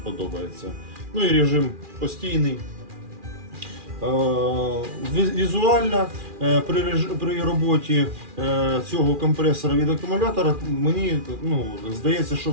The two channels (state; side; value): late; left; 2.4 ms